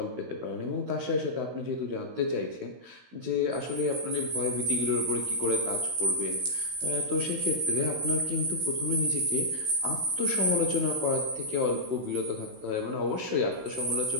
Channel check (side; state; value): left; late; 16 ms